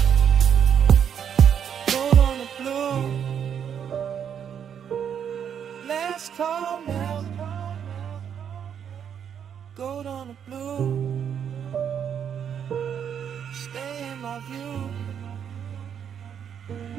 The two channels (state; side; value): quieter; left; 8.3 dB